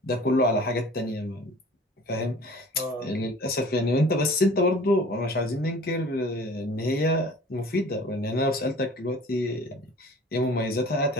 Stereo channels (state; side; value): normal; both; correlation 0.46